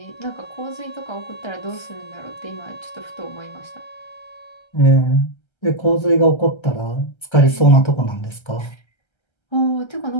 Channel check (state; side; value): late; right; 1.3 ms